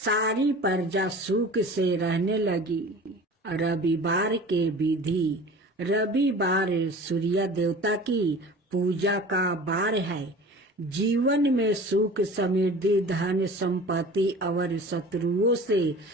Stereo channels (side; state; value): both; normal; correlation 0.40